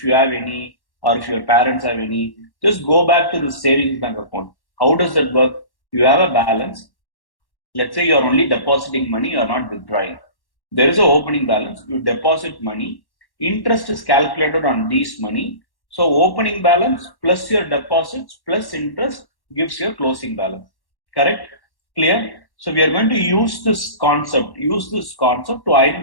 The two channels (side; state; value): right; late; 1.1 ms